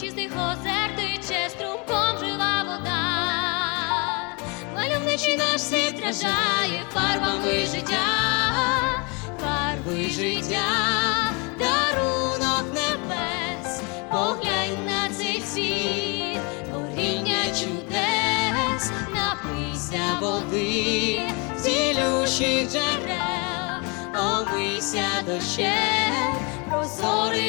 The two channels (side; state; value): right; quieter; 31.3 dB